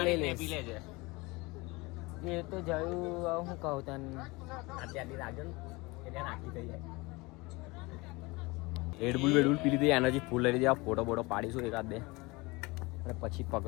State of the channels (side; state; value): right; quieter; 24.1 dB